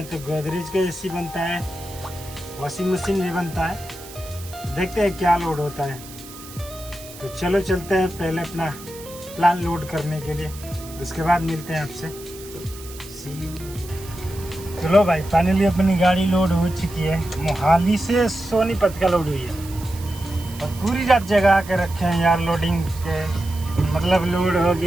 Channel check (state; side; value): noise; right; hiss, 17 dB below the sound